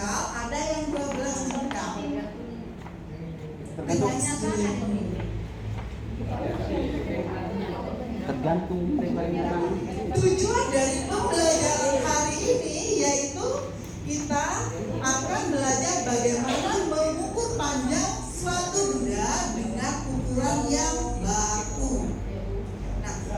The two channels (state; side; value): identical; both; correlation 1.00